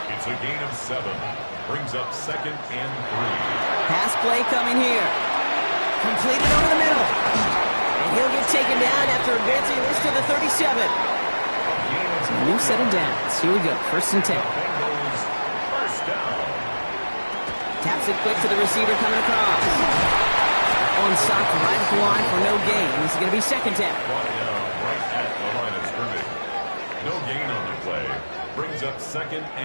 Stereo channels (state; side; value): inverted; both; correlation -1.00